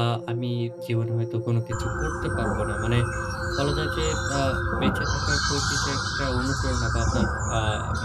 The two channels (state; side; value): identical; both; correlation 1.00